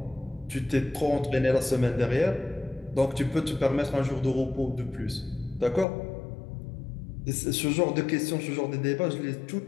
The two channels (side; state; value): right; drops out; at 5.9 s